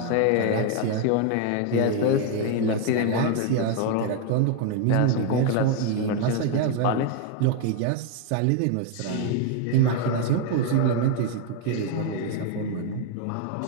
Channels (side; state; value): both; different; correlation 0.01